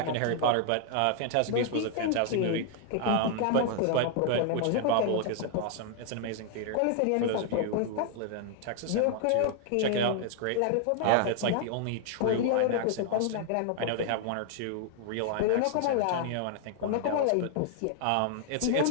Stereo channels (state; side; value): different; both; correlation 0.00